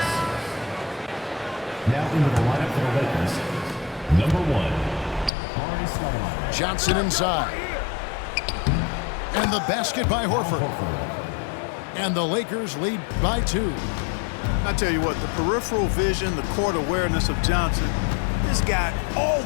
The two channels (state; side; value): drops out; right; at 5.3 s